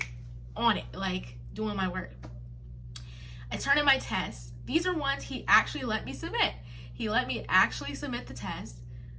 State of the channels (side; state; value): both; identical; correlation 1.00